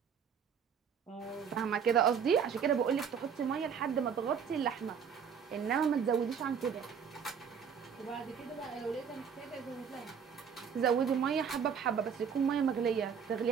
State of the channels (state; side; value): quieter; left; 7.1 dB